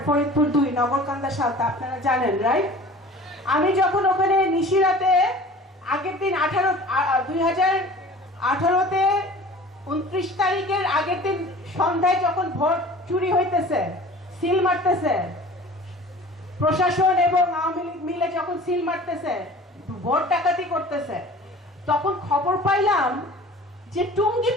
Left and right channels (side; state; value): both; normal; correlation 0.43